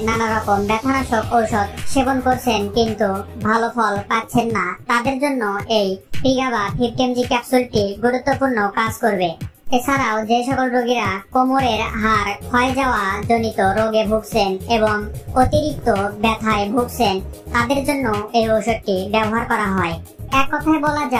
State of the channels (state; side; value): identical; both; correlation 1.00